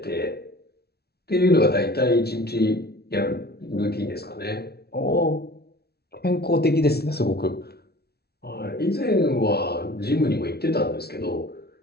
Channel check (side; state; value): right; late; 0.46 ms